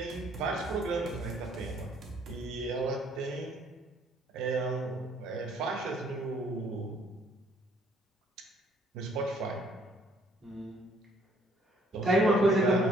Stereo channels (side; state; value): both; normal; correlation 0.63